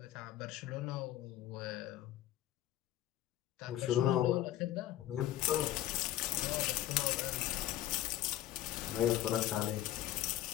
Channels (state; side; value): quieter; right; 13.4 dB